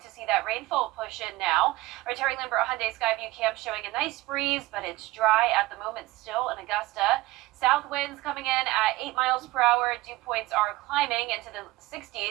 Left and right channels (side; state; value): left; quieter; 19.3 dB